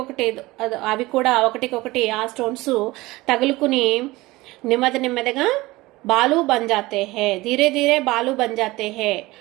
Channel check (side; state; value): left; quieter; 20.0 dB